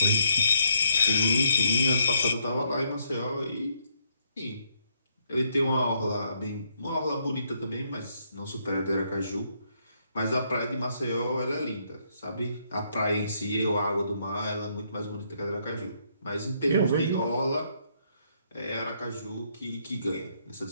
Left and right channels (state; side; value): inverted; both; correlation -0.73